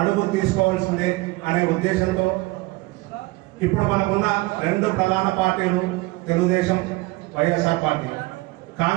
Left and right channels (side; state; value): left; quieter; 21.8 dB